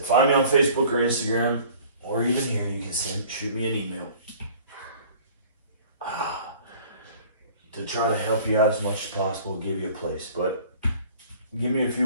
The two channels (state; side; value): inverted; both; correlation -0.49